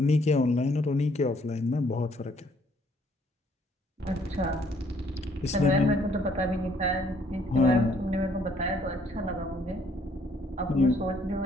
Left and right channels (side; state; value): both; normal; correlation 0.65